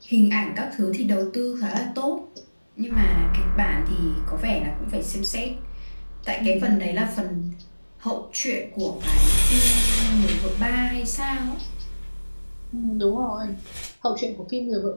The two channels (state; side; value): inverted; both; correlation -1.00